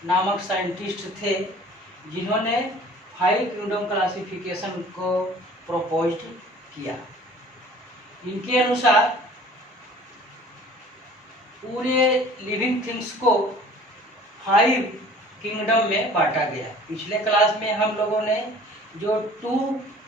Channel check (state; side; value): normal; both; correlation 0.48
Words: नामक साइंटिस्ट थे जिन्होंने फाइव किंगडम क्लासिफिकेशन को प्रपोज किया। इनके अनुसार पूरे लिविंग थिंग्स को फाइव किंगडम में बांटा गया। पिछले क्लास में हम लोगों ने जो टू